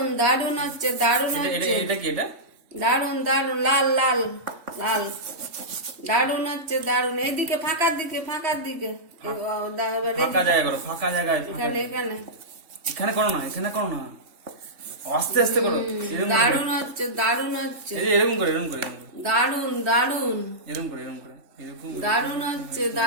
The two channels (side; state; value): left; late; 3.5 ms